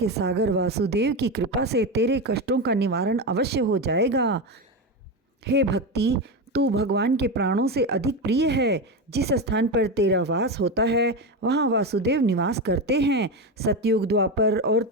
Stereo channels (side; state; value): both; normal; correlation 0.16